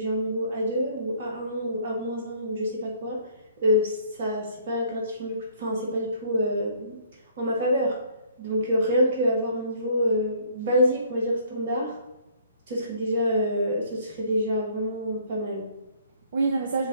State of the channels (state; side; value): inverted; both; correlation -0.59